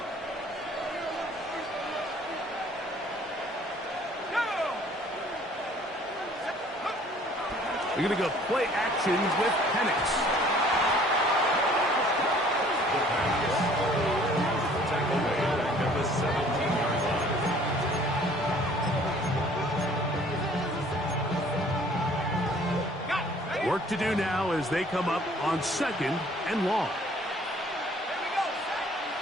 We're going to go play actions with Penix. Work to do now as they come up on 2nd and long.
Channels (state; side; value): normal; both; correlation 0.55